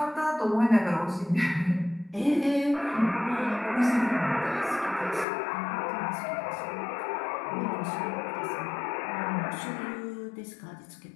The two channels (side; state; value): right; drops out; at 5.2 s